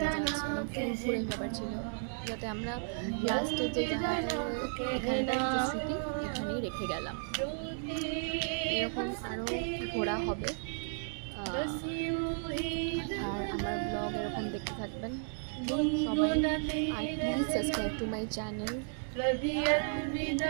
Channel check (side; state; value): left; silent; digital silence